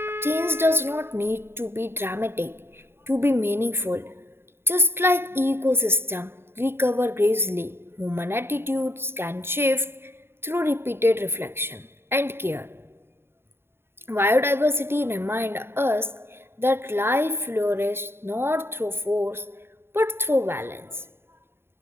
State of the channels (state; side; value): late; left; 0.11 ms